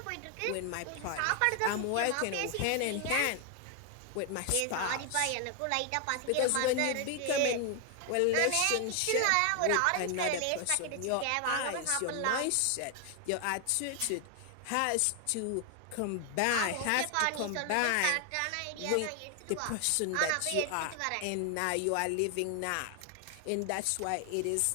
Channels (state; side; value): different; both; correlation 0.00